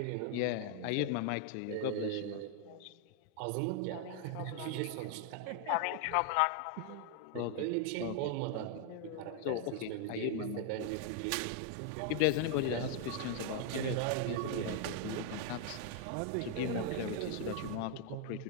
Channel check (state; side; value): different; both; correlation 0.00